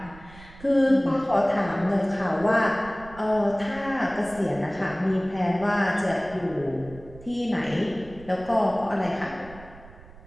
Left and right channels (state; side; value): noise; right; rumble, 19 dB below the sound